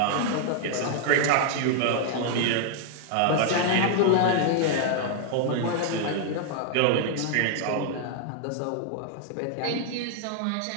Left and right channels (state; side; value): different; both; correlation 0.00